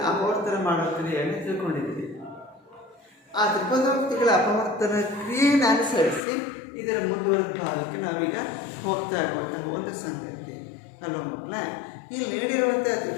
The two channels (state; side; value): drops out; right; at 6.2 s